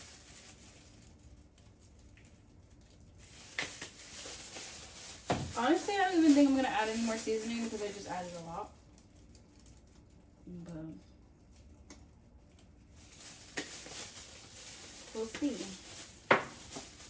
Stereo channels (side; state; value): both; identical; correlation 1.00